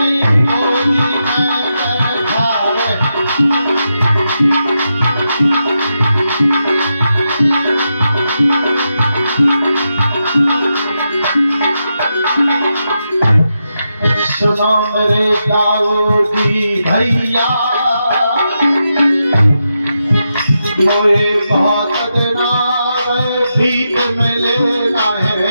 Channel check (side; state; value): both; inverted; correlation -0.86